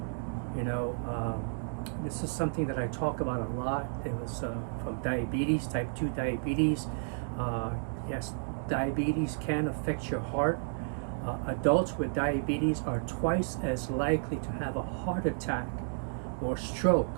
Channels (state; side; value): silent; left; digital silence